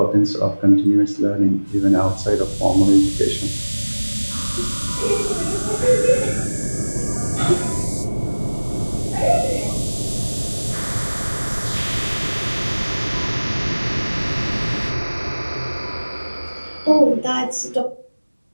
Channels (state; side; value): inverted; both; correlation -1.00